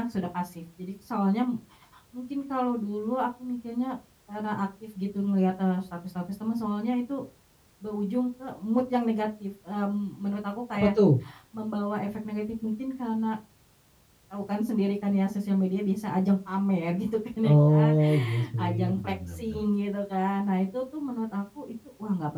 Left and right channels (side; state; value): both; identical; correlation 1.00